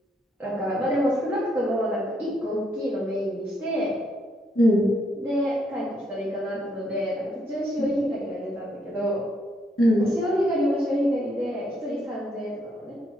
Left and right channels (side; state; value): both; normal; correlation 0.74